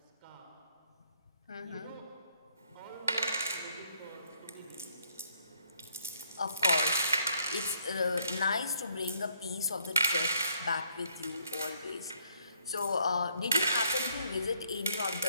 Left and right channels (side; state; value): both; inverted; correlation -0.69